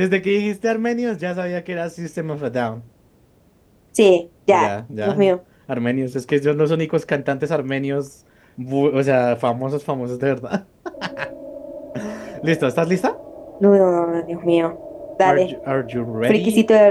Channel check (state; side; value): identical; both; correlation 1.00